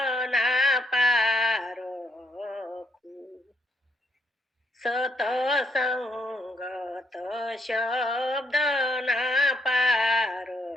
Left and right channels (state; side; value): normal; both; correlation 0.73